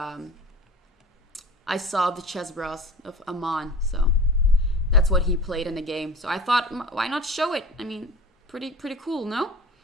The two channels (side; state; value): both; normal; correlation 0.39